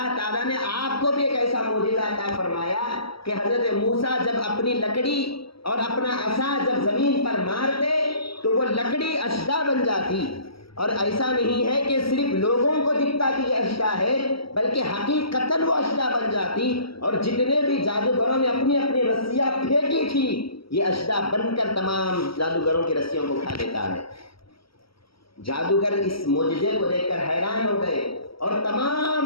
تعالیٰ نے آپ کو بھی ایک ایسا معجزہ عطا فرمایا کہ حضرت موسیٰ جب اپنی لکڑی اور اپنا عصا جب زمین پر مارتے تو وہ لکڑی اشدا بن جاتی، اور ایسا نہیں ہے کہ صرف لوگوں کو دکھتا کہ یہ اشدا ہے، بلکہ حقیقتاً وہ اشدا بن جاتی، اور جتنے بھی جادوگروں نے اپنی اپنی رسیاں پھینکی تھی، یہ اشدا بن کر تمام جادوگروں کی رسیوں کو کھا لیتا ہے۔ جادوگر اس معجزے کو دیکھ کر حیران ہو گئے اور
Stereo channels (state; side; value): late; right; 0.75 ms